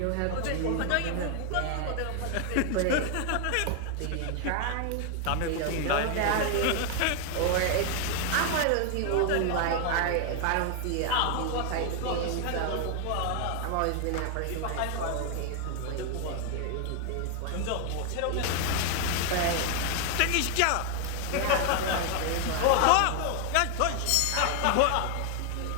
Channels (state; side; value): different; both; correlation 0.00